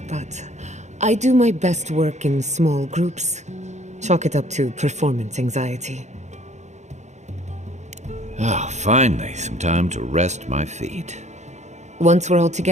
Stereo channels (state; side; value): late; left; 0.33 ms